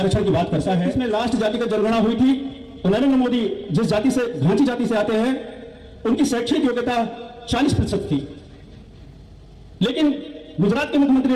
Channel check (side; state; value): both; identical; correlation 1.00